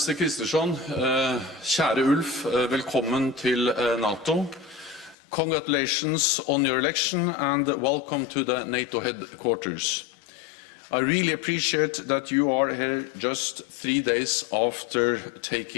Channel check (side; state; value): right; drops out; at 5.2 s